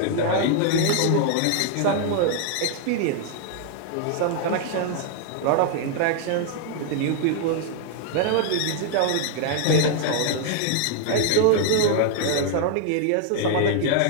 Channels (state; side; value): different; both; correlation 0.00